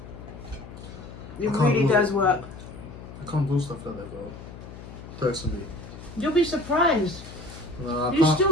It really does work. I can't do stuff like that though, personally. You'll be surprised. No, I You can't.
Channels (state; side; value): noise; left; hum, 14 dB below the sound